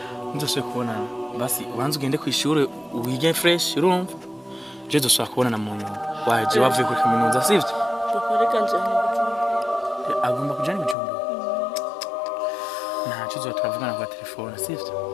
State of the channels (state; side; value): drops out; right; at 11.0 s